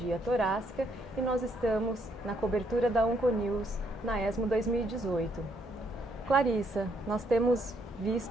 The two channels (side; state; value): both; normal; correlation 0.72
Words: Torácica e nós estamos na cobertura da Onconews na ESMO 2018. Clarissa, nós temos